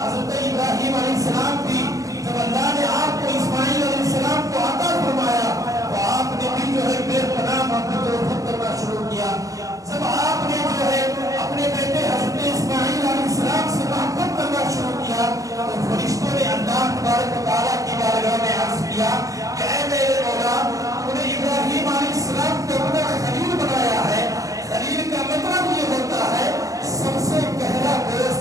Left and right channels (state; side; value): late; left; 0.16 ms